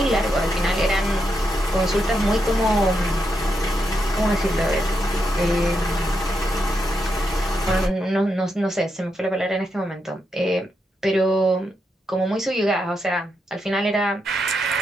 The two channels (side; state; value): both; normal; correlation 0.83